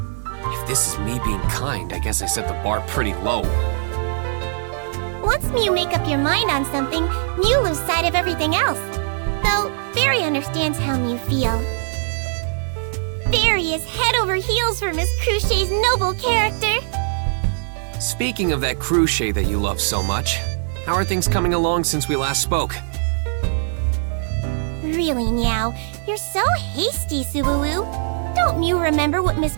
If this is me being kind, I guess I set the bar pretty low. Once Mew make up your mind on something, Mew lose sight of everything else. Though, Fairy understands how Mew feel. Fairy is head over heels for Miss Cruchet's noble character. Speaking of that Cruchet that you love so much, how are things coming along since we last spoke? Really, Meow, you're so hasty, Subaru. Don't Mew remember what Miss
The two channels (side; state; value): left; silent; digital silence